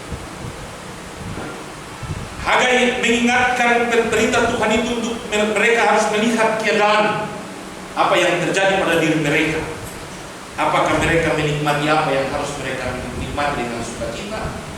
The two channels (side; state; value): both; identical; correlation 1.00